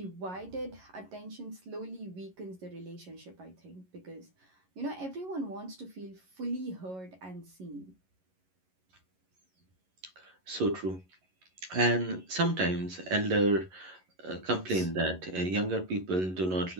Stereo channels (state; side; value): late; left; 11 ms